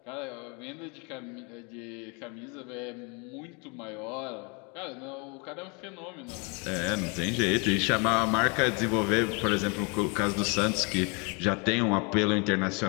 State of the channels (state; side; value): quieter; right; 32.4 dB